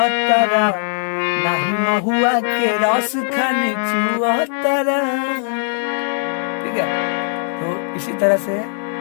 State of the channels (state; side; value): silent; right; 60 dB below the other